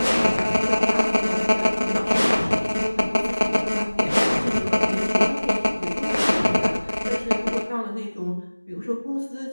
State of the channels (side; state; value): both; inverted; correlation -1.00